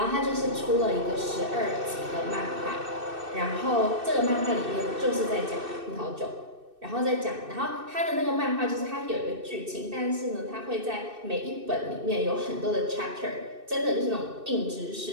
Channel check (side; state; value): left; late; 2.6 ms